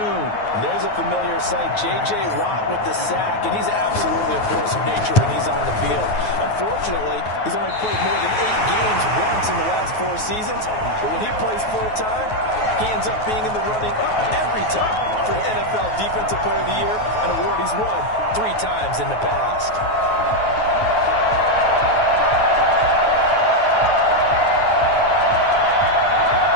And there's a familiar sight. J.J. Watt with the sack, and he's absolutely a force of nature when he's on the field. Unfortunately, he's only played more than 8 games once in the last 4 seasons. But when he plays full-time, he ends up being in the running every time for NFL Defensive Player of the Year, an award he's won 3 times in the past.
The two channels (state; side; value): late; right; 9.4 ms